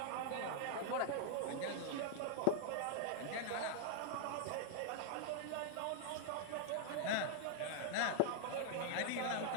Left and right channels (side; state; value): both; different; correlation -0.01